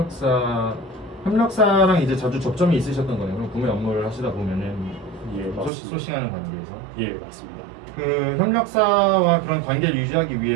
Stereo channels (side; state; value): left; drops out; at 5.7 s